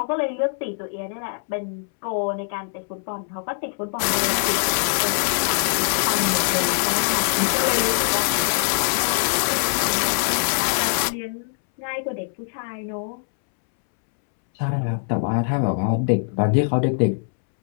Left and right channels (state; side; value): silent; right; 64 dB below the other